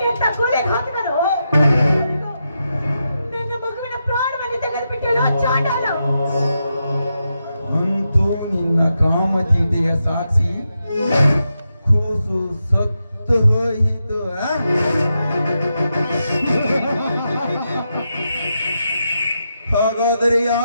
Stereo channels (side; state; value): both; inverted; correlation -0.86